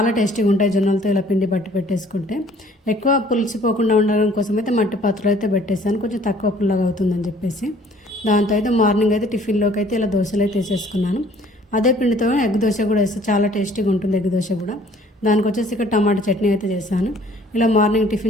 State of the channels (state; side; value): normal; both; correlation 0.56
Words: టేస్టీగా ఉంటాయి జొన్నలతో ఇలా పిండి పట్టి పెట్టేసుకుంటే. ఎక్కువ పులిసిపోకుండా ఉండడం కోసం అయితే మట్టి పాత్రలో అయితే పెట్టేసాను, కొంచెం తక్కువ పుల్లగా అవుతుందని చెప్పేసి. దాంతో అయితే మార్నింగ్ అయితే టిఫిన్లోకి అయితే ఇలా దోశలు అయితే వేసేసుకున్నాను. అదే పిండితో ఎగ్ దోశ కూడా వేస్తే చాలా టేస్టీగా ఉంటుంది ఎగ్ దోశ కూడా. దానికి వచ్చేసి ఇక్కడ టమాటా చట్నీ అయితే చేశాను. ఇలా మార్నింగ్